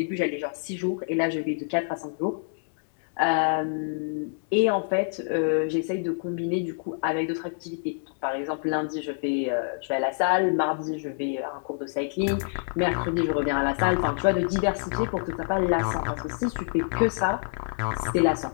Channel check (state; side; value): silent; right; digital silence